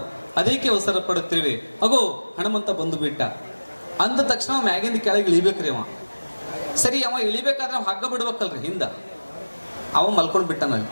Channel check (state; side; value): inverted; both; correlation -1.00